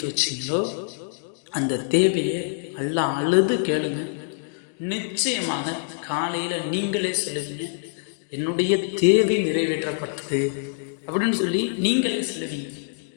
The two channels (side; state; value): right; silent; digital silence